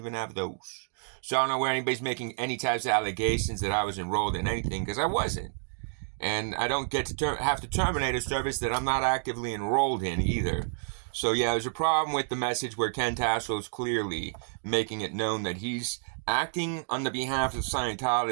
have those. So I don't know where anybody's making any types of allegations that I was enrolled in anything, because I wasn't. And I don't get to have to terminate a service that I'm not actively enrolled in either. So yeah, there's a problem with the message where Ken Tassel is clearly making it known that he's acting on the behalf of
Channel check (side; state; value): left; silent; digital silence